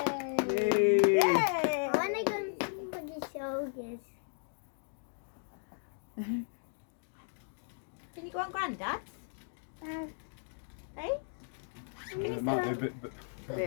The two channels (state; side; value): silent; right; digital silence